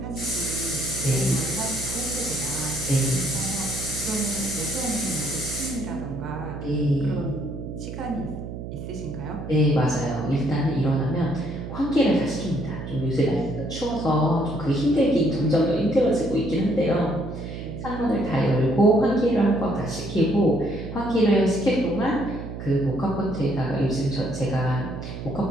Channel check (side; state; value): right; noise; hum, 8 dB below the sound